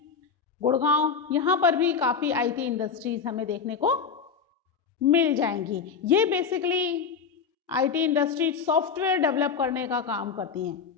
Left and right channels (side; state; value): right; quieter; 6.1 dB